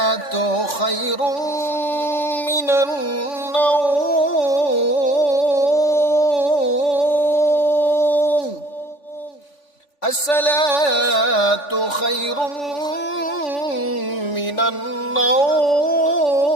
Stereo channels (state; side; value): late; right; 3.5 ms